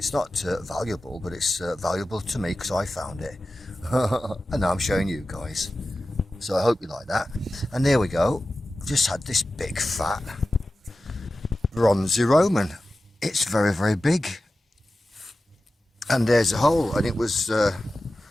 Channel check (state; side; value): normal; both; correlation 0.94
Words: not valuable, but it's valuable to me because I found it. And now I'm showing you guys. So I hope you like that. And there we go. I've just had this big fat bronzy Roman. It's very, very big. And there's a hole, and it was let